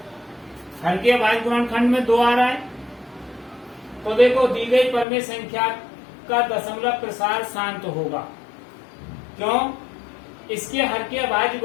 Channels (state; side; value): drops out; right; at 5.1 s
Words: हर के अभाज्य गुणनखंड में 2 आ रहा है। तो देखो दी गई परमेय संख्या का दशमलव प्रसार शांत होगा। क्यों? इसके हर के अभाज्य